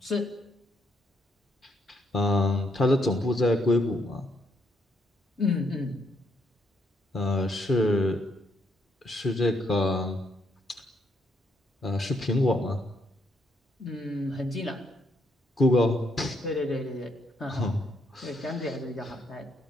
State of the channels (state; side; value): normal; both; correlation 0.74